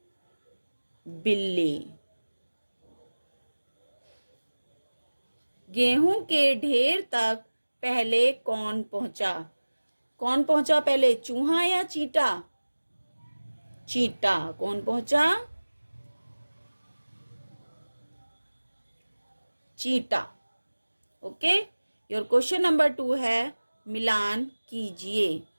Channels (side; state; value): both; inverted; correlation -1.00